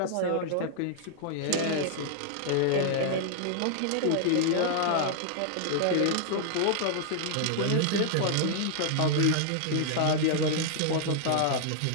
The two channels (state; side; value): different; both; correlation -0.01